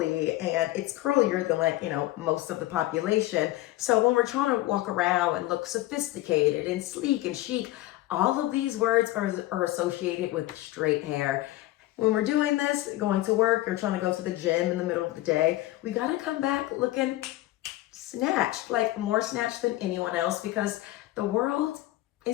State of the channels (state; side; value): quieter; right; 16.7 dB